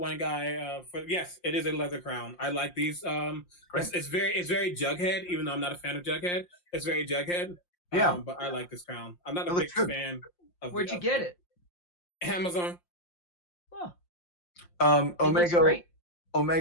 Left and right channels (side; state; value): right; late; 5.7 ms